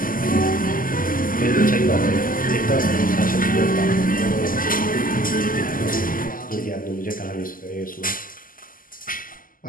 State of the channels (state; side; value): late; right; 0.41 ms